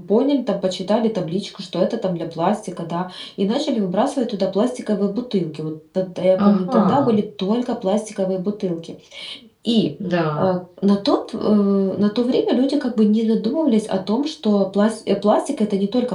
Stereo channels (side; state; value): both; identical; correlation 1.00